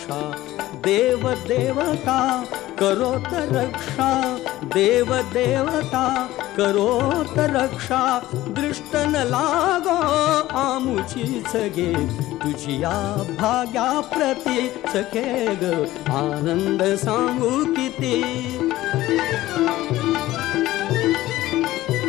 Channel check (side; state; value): right; quieter; 16.2 dB